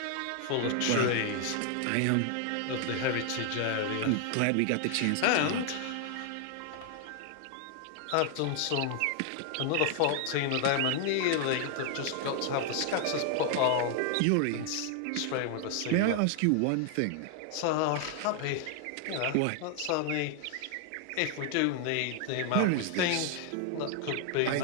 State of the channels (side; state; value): both; different; correlation 0.00